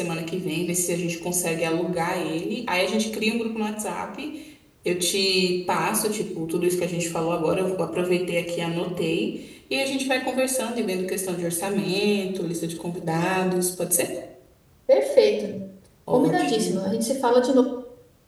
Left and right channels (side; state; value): both; identical; correlation 1.00